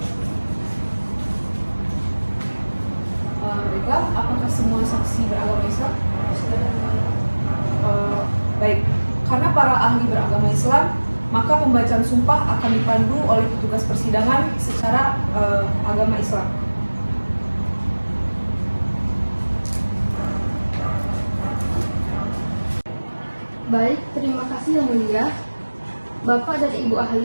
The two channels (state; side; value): inverted; both; correlation -1.00